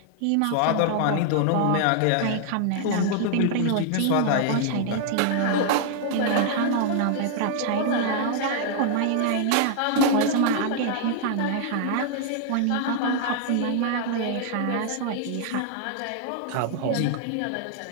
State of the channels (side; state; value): both; different; correlation 0.00